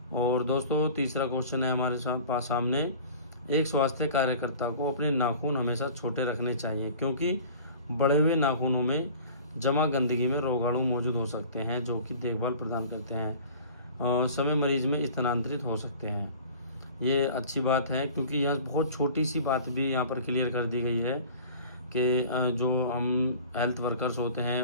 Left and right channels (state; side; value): inverted; both; correlation -0.43